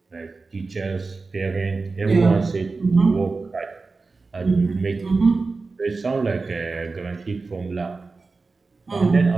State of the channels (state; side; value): quieter; left; 4.0 dB